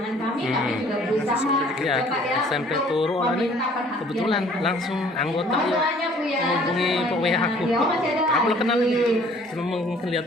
kami juga berusaha. Ya, SMP turu orang ini kebetulan langsung anggota ya menghubungi Pak WA aku. Aku lo kenal ini, cuma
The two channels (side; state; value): both; normal; correlation 0.55